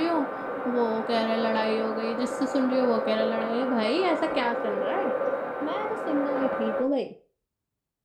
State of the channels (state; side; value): identical; both; correlation 1.00